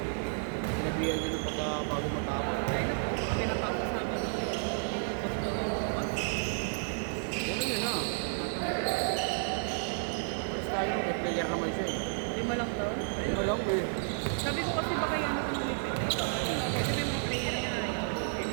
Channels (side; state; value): left; silent; digital silence